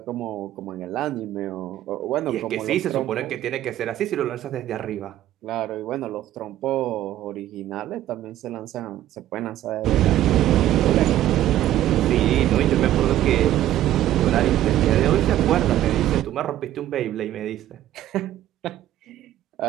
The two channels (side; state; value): left; quieter; 13.1 dB